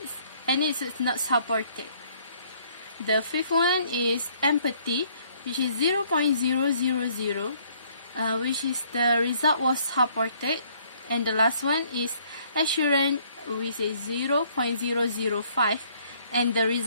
and it is not supported. The fifth one is empathy, which is 0.000, which is the result was supported, and the last one is assurance, which is 0.005, and the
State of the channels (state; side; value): inverted; both; correlation -0.63